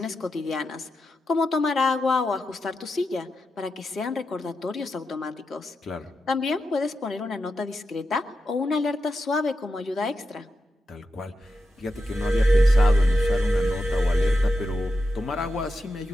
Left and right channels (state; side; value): normal; both; correlation 0.88